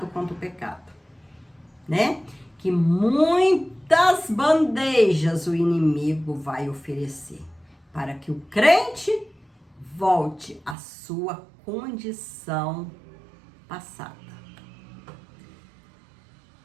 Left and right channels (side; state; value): left; drops out; at 10.8 s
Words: contra o pecado, né? Que muitas bandejas o inimigo vai oferecer para que o crente volte à sua condição passada.